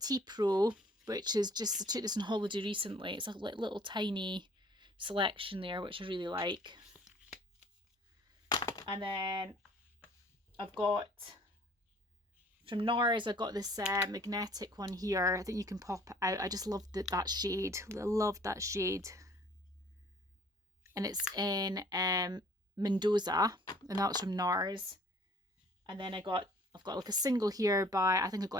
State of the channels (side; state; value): both; normal; correlation 0.55